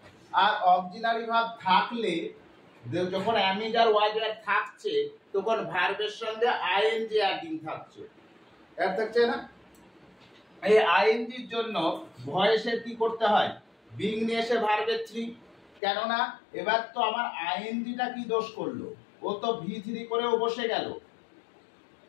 আর অক্সিলারি ভার্ব থাকলে যখন অ্যামিজার ওয়াজ ওয়্যার থাকছে তখন ভার্বের সঙ্গে আইএনজি অ্যাডিং থাকছে, এর থাকছে না? এই আইএনজির জন্য ভয়েসের কি করতে হয়? বিং নিয়ে এসে ভার্বের 3, কেননা এবার তো আমার আইএনজিটা কি দোষ করলো, ও তো V3 করেও বসে গেল,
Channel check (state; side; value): drops out; right; at 15.8 s